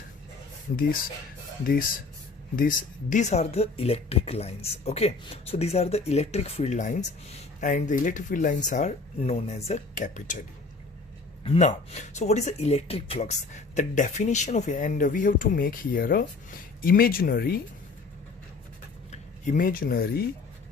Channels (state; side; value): quieter; right; 4.0 dB